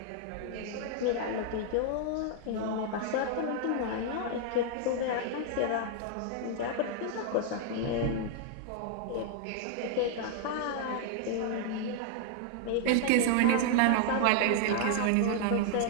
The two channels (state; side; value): different; both; correlation 0.00